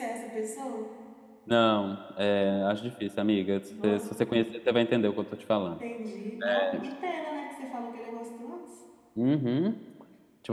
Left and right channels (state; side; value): identical; both; correlation 1.00